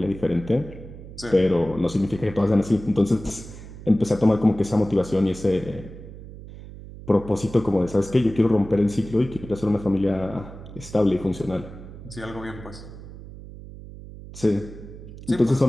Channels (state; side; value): noise; right; hum, 15 dB below the sound